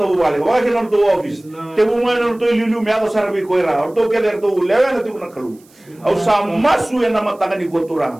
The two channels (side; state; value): right; noise; hiss, 30 dB below the sound